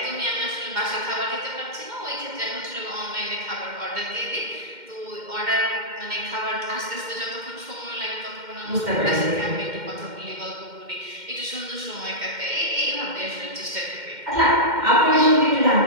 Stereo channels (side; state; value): left; late; 2.1 ms